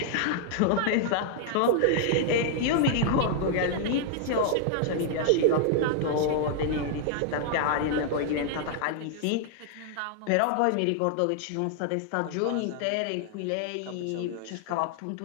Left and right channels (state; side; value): different; both; correlation 0.00